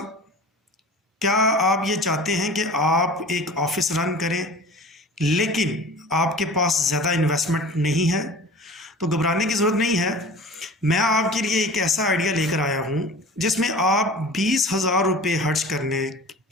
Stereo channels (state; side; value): normal; both; correlation 0.39